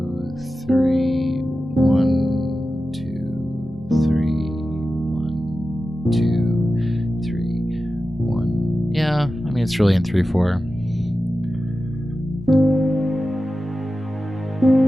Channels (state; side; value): normal; both; correlation 0.93